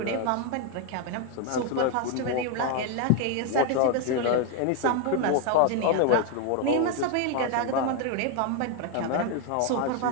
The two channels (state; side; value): different; both; correlation 0.01